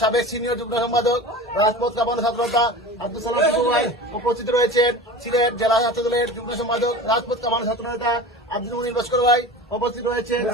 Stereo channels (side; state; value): both; normal; correlation 0.34